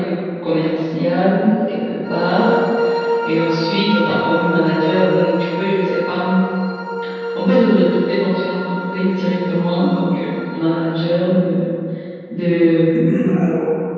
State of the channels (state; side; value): identical; both; correlation 1.00